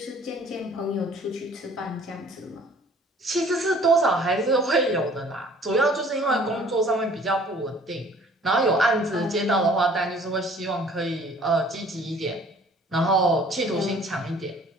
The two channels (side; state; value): both; normal; correlation 0.54